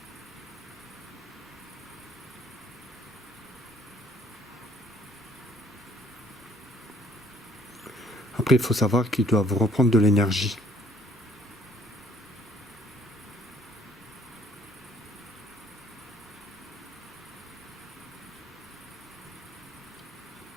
Après, il faut savoir qu'ils doivent reprendre de l'énergie.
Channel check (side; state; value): both; normal; correlation 0.60